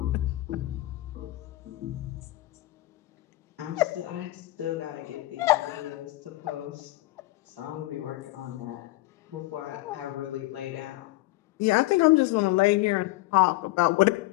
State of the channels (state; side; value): quieter; right; 18.9 dB